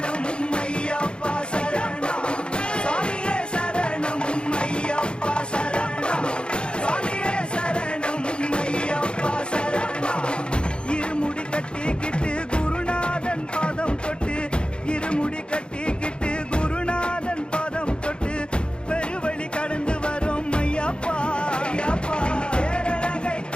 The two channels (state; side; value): late; right; 0.054 ms